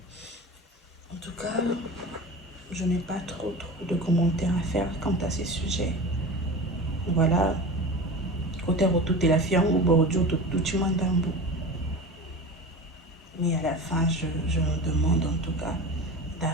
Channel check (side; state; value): both; normal; correlation 0.31